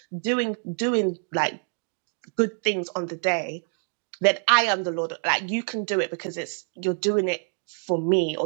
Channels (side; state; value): left; silent; 58 dB below the other